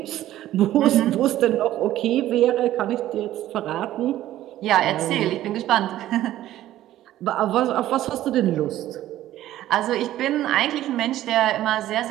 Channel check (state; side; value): quieter; left; 13.7 dB